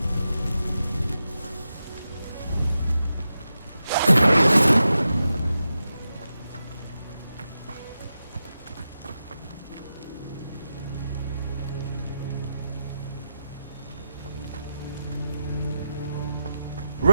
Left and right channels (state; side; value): inverted; both; correlation -0.90